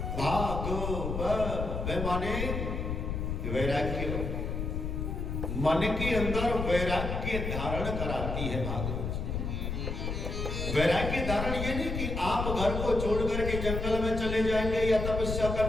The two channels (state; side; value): noise; left; rumble, 3 dB below the sound